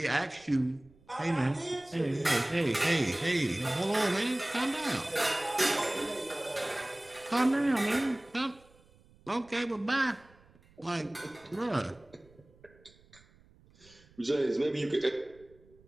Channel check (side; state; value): right; noise; rumble, 28 dB below the sound